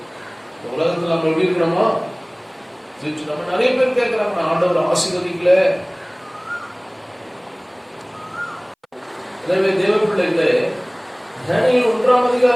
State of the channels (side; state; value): both; identical; correlation 1.00